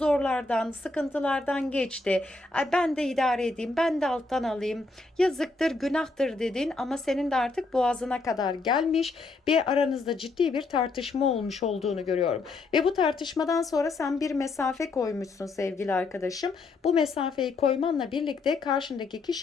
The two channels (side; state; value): right; quieter; 3.6 dB